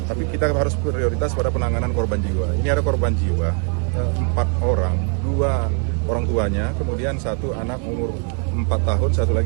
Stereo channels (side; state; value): left; quieter; 39.9 dB